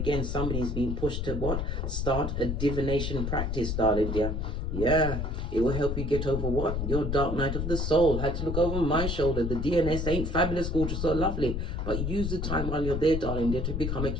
somebody's being pushed to what? Start a divination practice, darling dear. Yeah, it will help you get over what? Your dark night of the soul. Had to look over my shoulder. The DNS ain't fabulous, gorgeous, or lovely. But use the time while you're there, darling dear, to become a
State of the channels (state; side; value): noise; left; rumble, 2 dB below the sound